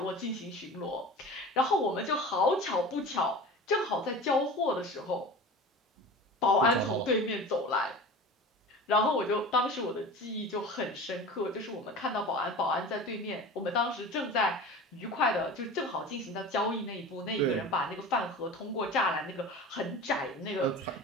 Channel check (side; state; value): both; normal; correlation 0.35